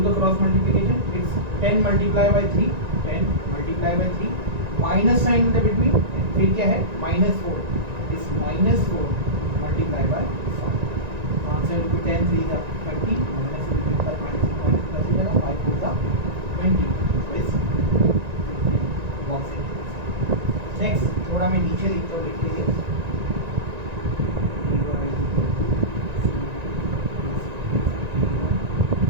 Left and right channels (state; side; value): late; left; 1.9 ms